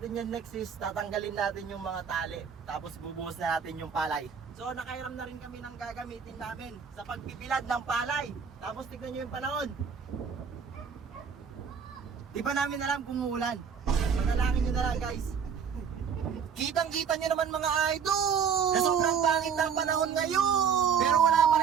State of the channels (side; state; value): left; quieter; 6.8 dB